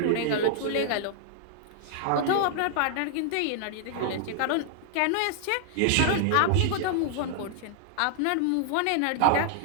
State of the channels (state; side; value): different; both; correlation 0.00